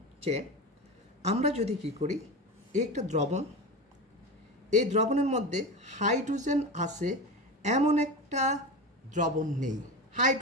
যে আমরা যদি কি করি, একটা দ্রবণ, এই দ্রবণের মধ্যে হাইড্রোজেন আছে এমন একটা দ্রবণ নেই,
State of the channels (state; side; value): normal; both; correlation 0.25